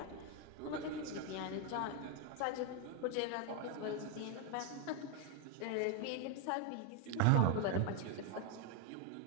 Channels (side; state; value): both; different; correlation 0.01